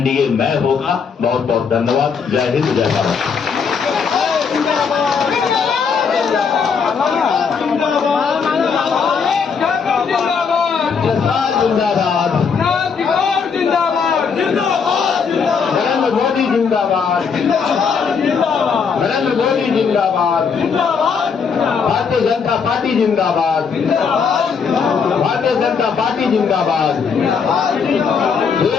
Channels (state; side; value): quieter; right; 6.0 dB